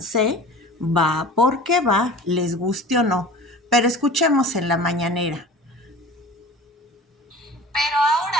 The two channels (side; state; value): both; normal; correlation 0.40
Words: C va porque va, les guste o no. Pero escuchemos en la mañanera. Pero